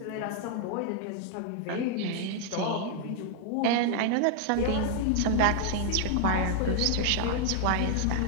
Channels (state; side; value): different; both; correlation 0.00